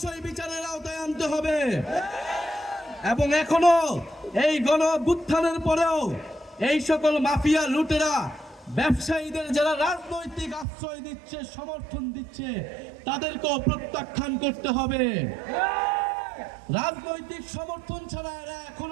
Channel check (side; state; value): left; drops out; at 10.7 s